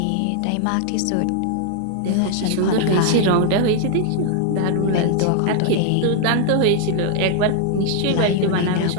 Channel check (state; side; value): different; both; correlation 0.00